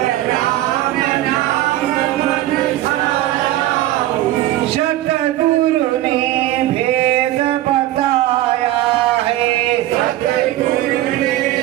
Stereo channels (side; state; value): left; quieter; 14.8 dB